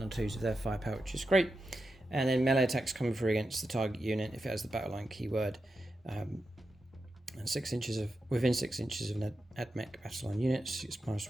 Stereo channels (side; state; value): both; normal; correlation 0.89